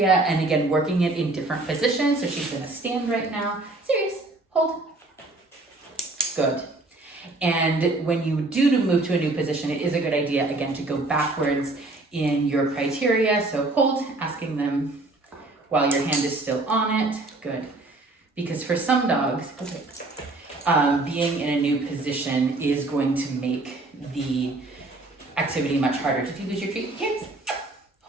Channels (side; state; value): left; quieter; 3.0 dB